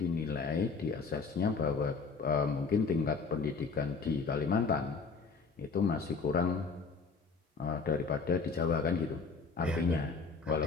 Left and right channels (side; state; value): right; quieter; 4.9 dB